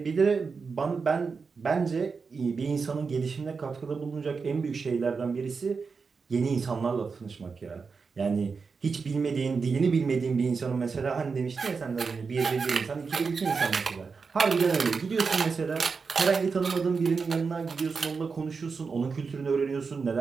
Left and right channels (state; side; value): quieter; left; 5.0 dB